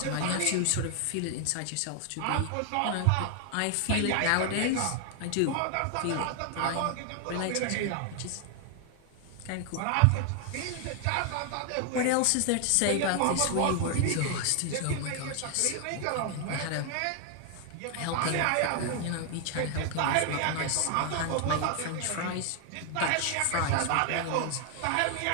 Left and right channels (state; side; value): different; both; correlation 0.00